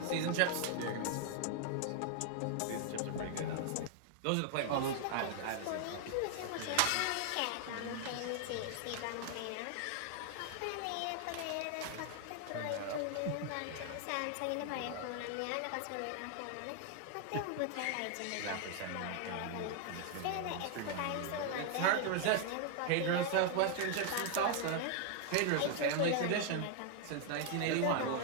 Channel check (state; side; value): different; both; correlation 0.00